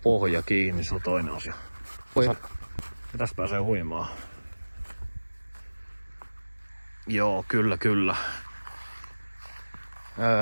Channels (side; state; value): both; inverted; correlation -1.00